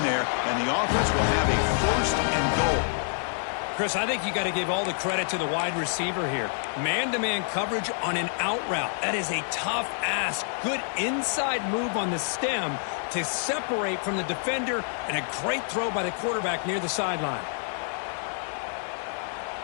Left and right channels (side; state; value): right; silent; 60 dB below the other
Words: there, and the offense will have a 1st and goal. Chris, I think you got to give all the credit to the wide receiver here. Man-to-man coverage on an out route. That is a tough ask. Good inside move on the stem to separate from the defender, and a great throw by the quarterback near the sideline.